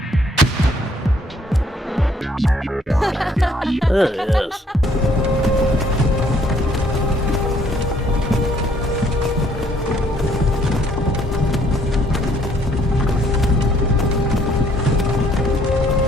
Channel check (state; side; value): normal; both; correlation 0.64